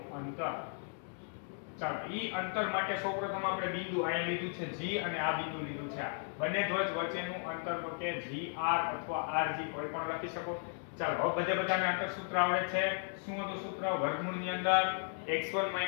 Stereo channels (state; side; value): silent; right; 54 dB below the other